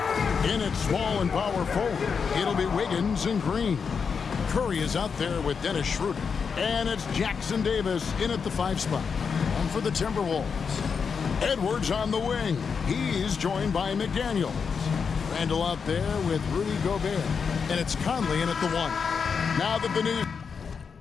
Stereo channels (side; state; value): right; quieter; 5.9 dB